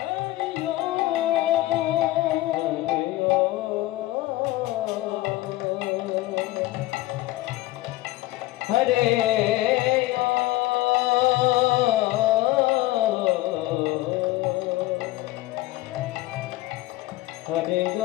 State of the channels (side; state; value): right; quieter; 17.8 dB